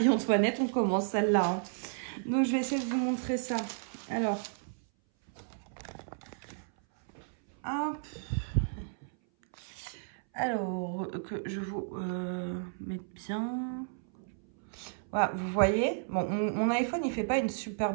on commence celle-là. Hein. Donc, je vais essayer de vous montrer ça. Alors, Hop. Alors, que je vous mette bien. Voilà, vous voyez, bon, mon iPhone, il fait pas une super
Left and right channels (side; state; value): left; silent; 56 dB below the other